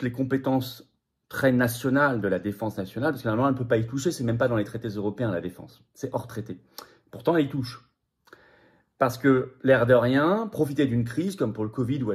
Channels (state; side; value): identical; both; correlation 1.00